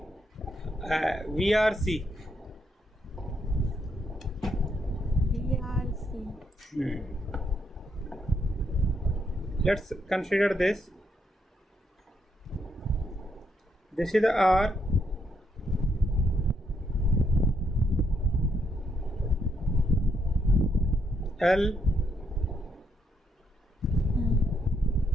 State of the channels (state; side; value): normal; both; correlation 0.77